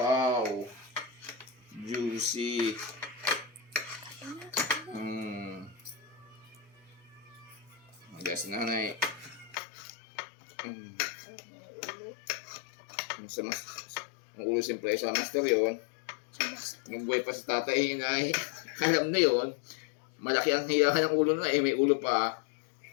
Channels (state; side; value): drops out; right; at 9.6 s